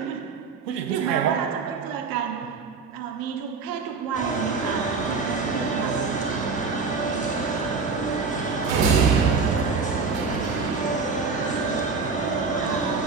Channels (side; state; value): left; quieter; 4.7 dB